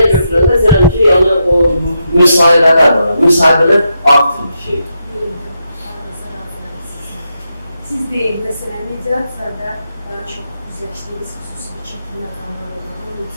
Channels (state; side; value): inverted; both; correlation -0.83